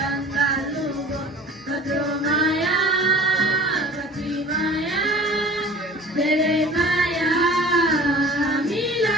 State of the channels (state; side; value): normal; both; correlation 0.44